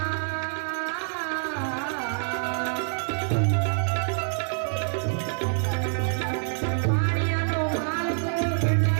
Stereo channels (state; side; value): silent; left; 60 dB below the other